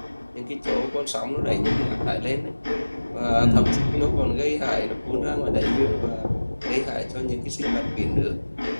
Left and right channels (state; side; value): inverted; both; correlation -1.00